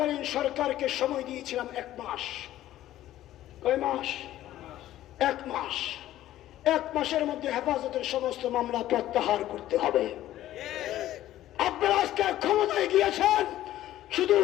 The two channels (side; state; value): right; quieter; 13.7 dB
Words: সরকারকে সময় দিয়েছিলাম 1 মাস। কয় মাস? 1 মাস। 1 মাসের মধ্যে হেফাজতের সমস্ত মামলা প্রত্যাহার করতে হবে। আপনারা আজকে ক্ষমতায় গিয়েছেন শুধু